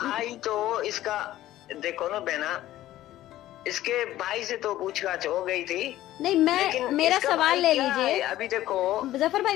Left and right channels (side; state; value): right; quieter; 14.4 dB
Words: तो इसका देखो ना बहना, इसके भाई से तो पूछताछ हो गई थी। नहीं, मेरा सवाल ले लीजिए। अभी देखो जफर भाई,